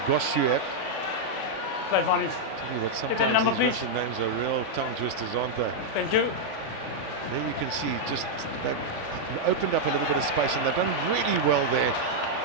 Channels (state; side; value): late; left; 3.5 ms